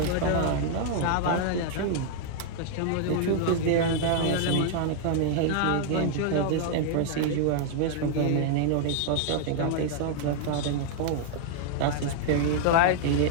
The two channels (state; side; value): different; both; correlation -0.01